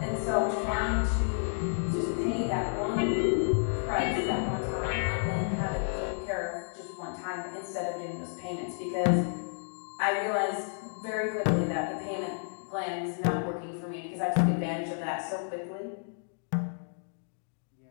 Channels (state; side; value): silent; right; digital silence